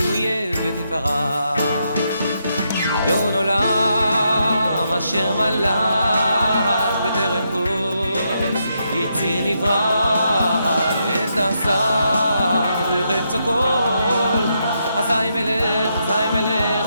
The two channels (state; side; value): inverted; both; correlation -0.80